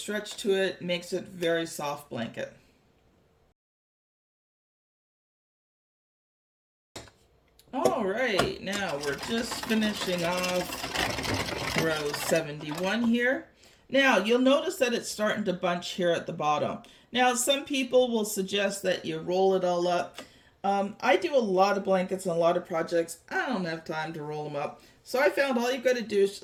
to it. Makes it a very soft blanket. All right, now we're just finishing off row 71 here. Now you'll notice that it's starting to bunch here at the bottom. Now some people will suggest that you roll it all up. I do a lot of blankets and a lot of projects. I don't have time to roll them up. So I found all you've got to do is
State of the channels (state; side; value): identical; both; correlation 1.00